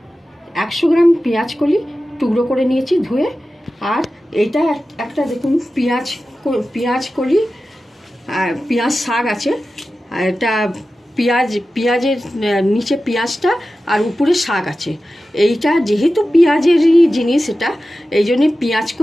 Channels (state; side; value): normal; both; correlation 0.94